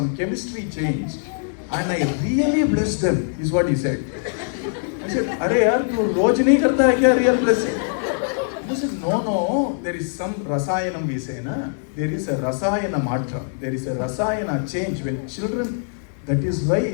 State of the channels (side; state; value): right; silent; digital silence